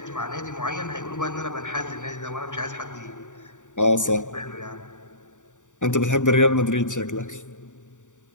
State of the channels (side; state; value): right; late; 0.86 ms